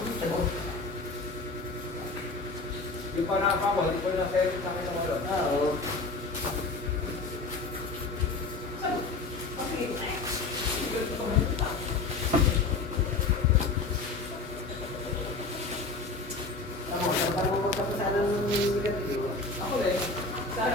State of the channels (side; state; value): right; quieter; 3.7 dB